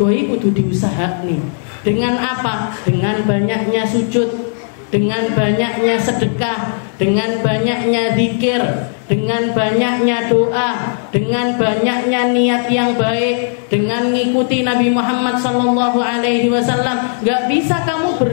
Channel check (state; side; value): silent; right; digital silence